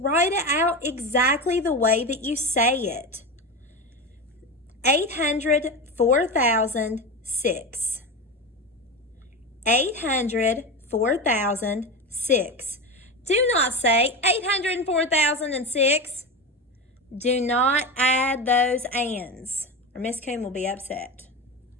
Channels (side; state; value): both; normal; correlation 0.21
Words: it out exactly the way that you say it. 804,006. 804,006. Do not say 804,006. Do not add those ands, or Miss Coon will be upset.